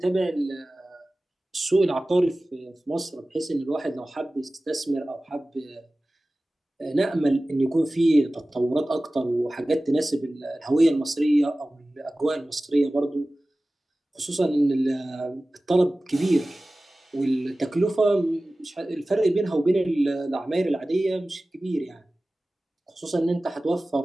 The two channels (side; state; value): both; normal; correlation 0.97